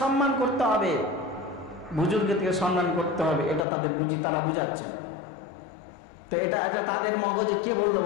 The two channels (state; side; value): drops out; right; at 3.7 s